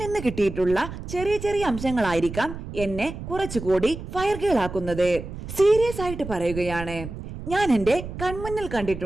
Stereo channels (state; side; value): noise; right; rumble, 10 dB below the sound